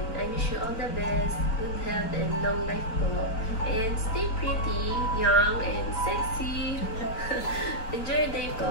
I wish you all the best, good health and long life po. And stay pretty, young and sexy. Enjoy your day po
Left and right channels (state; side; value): late; right; 4.4 ms